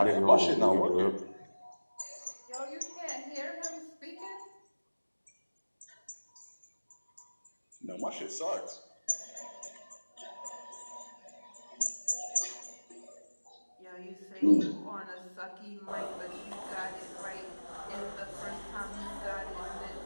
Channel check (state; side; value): inverted; both; correlation -1.00